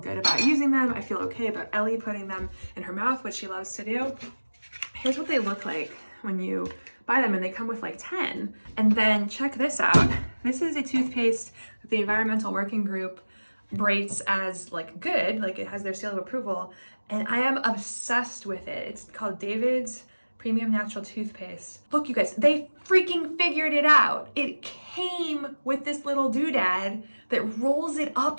about using them. I feel okay about Ellie putting them in her mouth, which she loves to do. Here's what they look like when you buy them, and they come with like 10. And then check this out. This is a toothpaste that the Environmental Working Group rates as like good, like it has their seal of approval, and I am obsessed with it. It's called David's premium natural toothpaste. Look, you guys, they freaking figured it out. It came with this little doodad that rolls it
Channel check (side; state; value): both; inverted; correlation -1.00